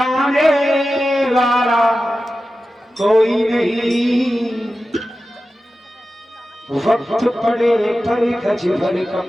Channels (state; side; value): normal; both; correlation 0.93